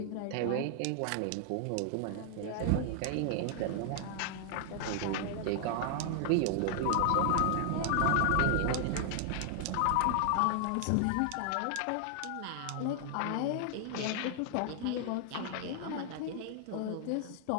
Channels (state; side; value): different; both; correlation 0.00